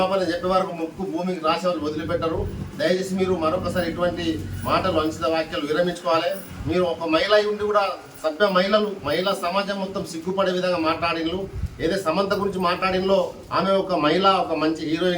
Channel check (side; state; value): both; identical; correlation 1.00